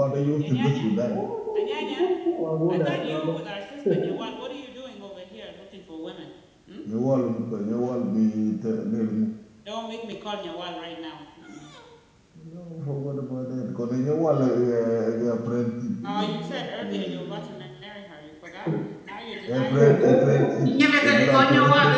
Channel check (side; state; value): both; identical; correlation 1.00